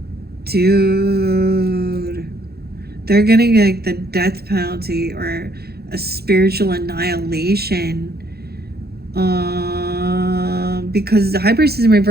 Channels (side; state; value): left; late; 0.46 ms